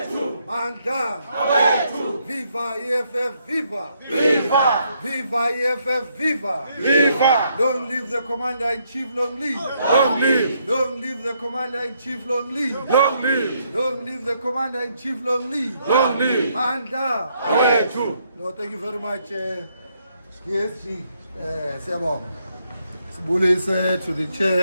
Manda, viva EFF, viva! Viva EFF, viva! Long live the Commander-in-Chief, long live! Long live the Commander-in-Chief, long live! Long live the Commander-in-Chief, long live! Manda! No, thank you very much, ESG. Bullies to the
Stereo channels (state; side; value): inverted; both; correlation -0.74